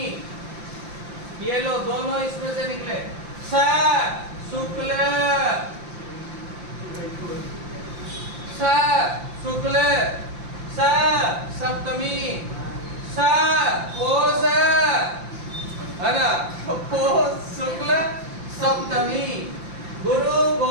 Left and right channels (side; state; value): left; late; 5.8 ms